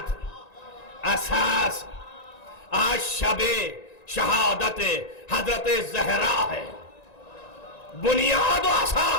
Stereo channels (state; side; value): late; right; 1.9 ms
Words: اساس. آج شب شہادت حضرت زہرا ہے. بنیاد و